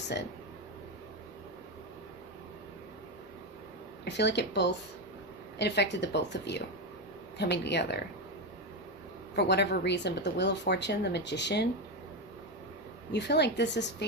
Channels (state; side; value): normal; both; correlation 0.12